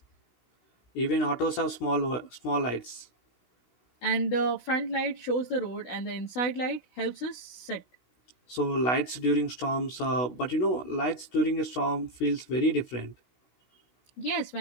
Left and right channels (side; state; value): right; late; 16 ms